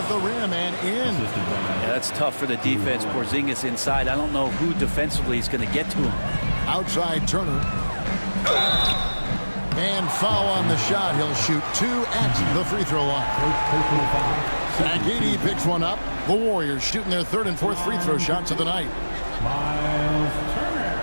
the rim and in. Yeah, that's tough for the defense. Porzingis inside. I don't know who defensively is going to get to him. Outside Turner. And foul on the shot. He'll shoot 2 at the free throw line. Agidi picks one up. The Warriors shooting their 3rd and 4th free throw shots of the night. Miles Turner.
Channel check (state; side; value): inverted; both; correlation -1.00